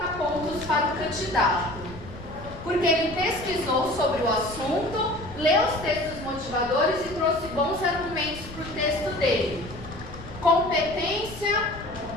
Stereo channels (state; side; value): noise; left; rumble, 14 dB below the sound